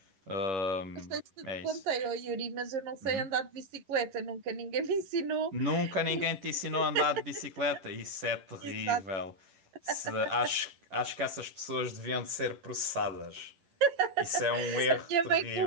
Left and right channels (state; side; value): late; left; 10 ms